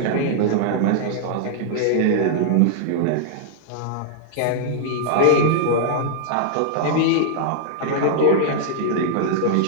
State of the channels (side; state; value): both; different; correlation -0.01